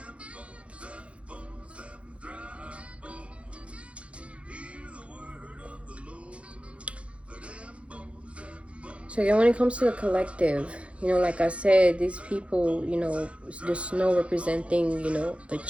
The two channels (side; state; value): left; late; 0.061 ms